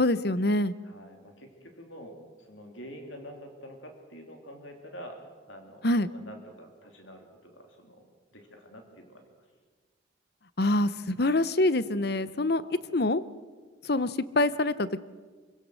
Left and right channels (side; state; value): both; normal; correlation 0.32